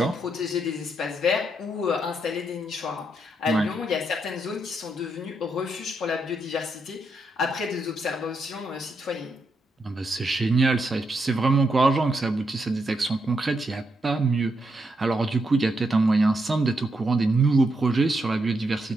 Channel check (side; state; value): both; normal; correlation 0.80